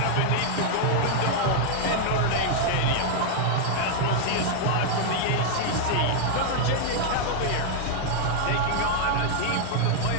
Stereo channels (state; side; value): different; both; correlation 0.00